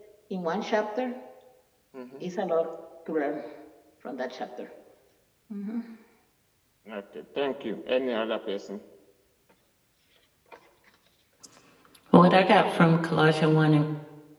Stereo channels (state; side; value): identical; both; correlation 1.00